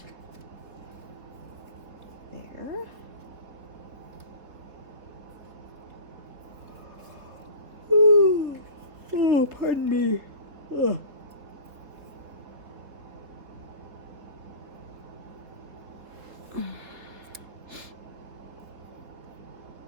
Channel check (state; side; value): late; left; 3.9 ms